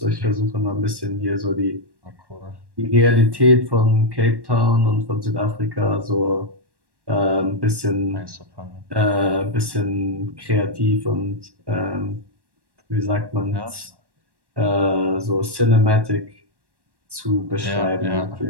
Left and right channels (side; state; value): left; late; 1.1 ms